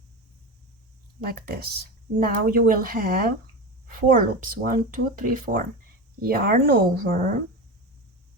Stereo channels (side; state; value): both; normal; correlation 0.23